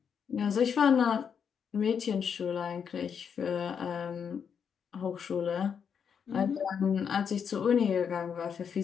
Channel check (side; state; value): right; quieter; 7.2 dB